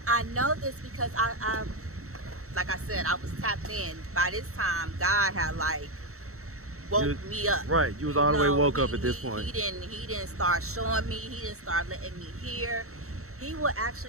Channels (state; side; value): late; left; 0.64 ms